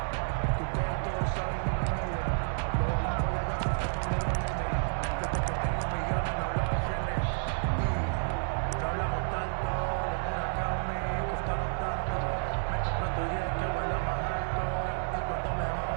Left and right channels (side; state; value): left; silent; digital silence